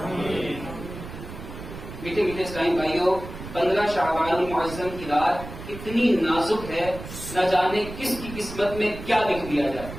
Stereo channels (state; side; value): noise; right; rumble, 11 dB below the sound